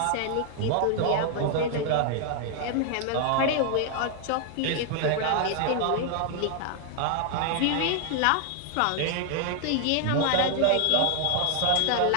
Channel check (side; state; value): both; different; correlation 0.00